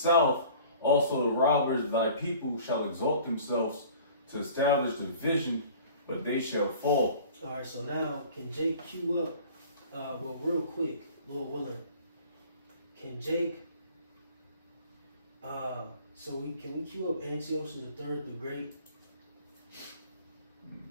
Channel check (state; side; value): inverted; both; correlation -0.47